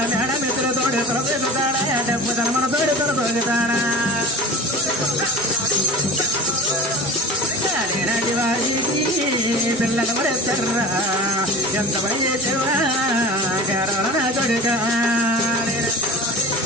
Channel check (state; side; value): normal; both; correlation 0.36